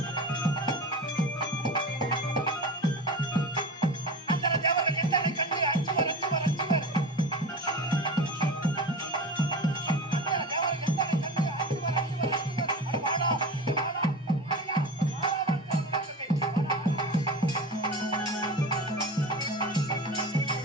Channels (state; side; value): normal; both; correlation 0.30